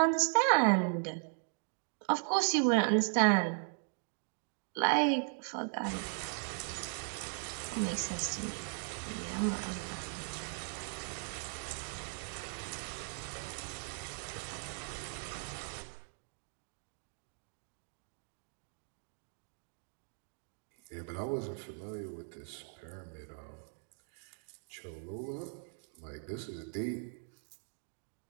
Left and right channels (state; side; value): silent; left; 52 dB below the other